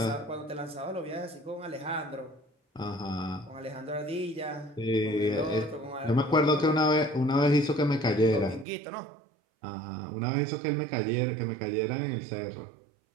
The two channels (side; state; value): left; drops out; at 8.7 s